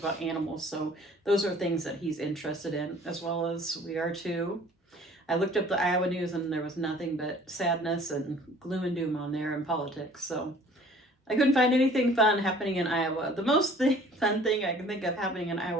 animals, so those are things that he's interested in, as well as we are too. I looked up the Iowa news and there was nothing but sadness and gloom and doom on there in politics, so I couldn't find anything fun happening in Iowa. The most fun thing I can think of happening in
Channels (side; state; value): both; normal; correlation 0.52